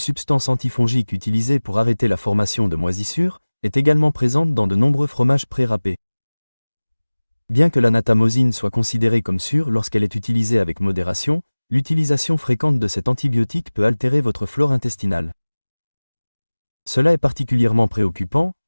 antifongique utilisée pour arrêter la formation de moisissures, est également présente dans de nombreux fromages pré-râpés. Bien que la natamosine soit considérée comme sûre lorsqu'elle est utilisée avec modération, l'utilisation fréquente de cet antibiotique peut altérer votre flore intestinale. Cela est particulièrement préoccupant,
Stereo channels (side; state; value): both; inverted; correlation -1.00